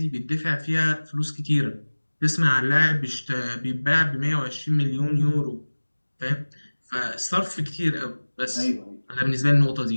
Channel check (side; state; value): both; inverted; correlation -1.00